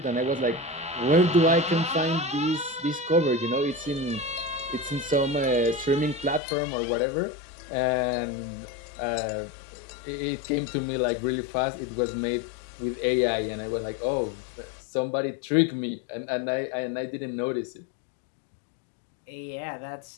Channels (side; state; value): right; drops out; at 6.4 s